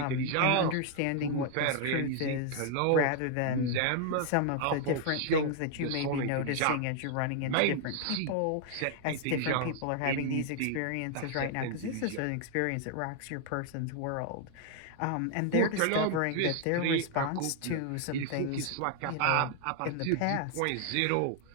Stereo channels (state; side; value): different; both; correlation 0.00